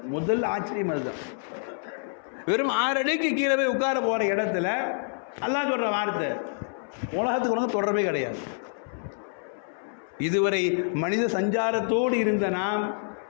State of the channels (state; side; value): silent; right; 60 dB below the other